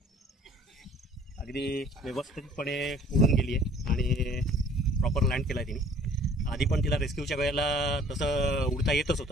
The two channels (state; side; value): normal; both; correlation 0.53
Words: अगदी व्यवस्थितपणे उडून गेली आहे आणि प्रॉपर लँड केला आहे तिने. आधी पण तिला रेस्क्यूच्या वेळेला तसं उडता येतच